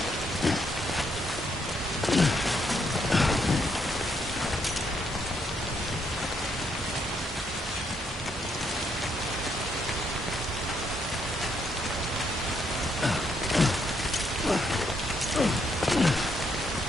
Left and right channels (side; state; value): both; normal; correlation 0.74